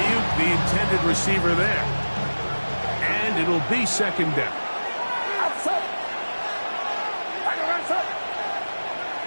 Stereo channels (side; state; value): both; inverted; correlation -1.00